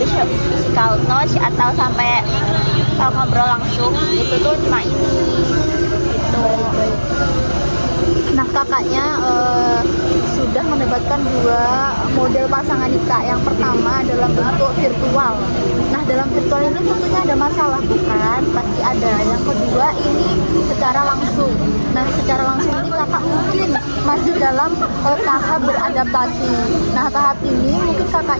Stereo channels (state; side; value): inverted; both; correlation -1.00